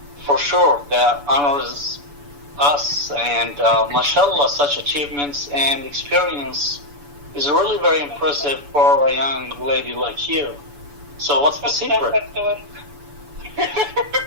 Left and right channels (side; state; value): left; late; 7.0 ms